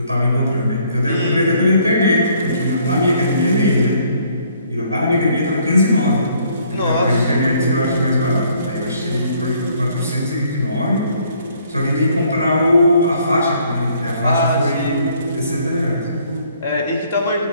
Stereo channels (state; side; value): inverted; both; correlation -0.64